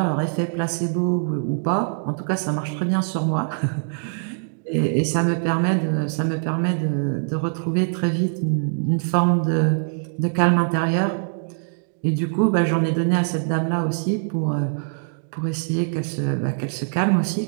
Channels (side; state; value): left; silent; digital silence